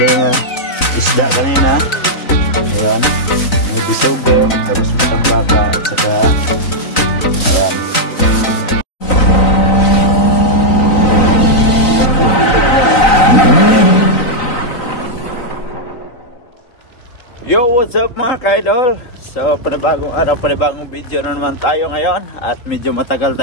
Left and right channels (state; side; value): late; right; 3.9 ms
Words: na isda kanina. Ayan. May bisugo, tapos matambaka, at saka ayan. Yo, what's up mga ka-idol? So, panibagong araw, panibagong video na naman tayo ngayon. At medyo matagal